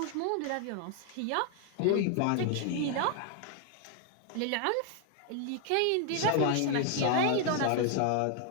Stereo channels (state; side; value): different; both; correlation 0.00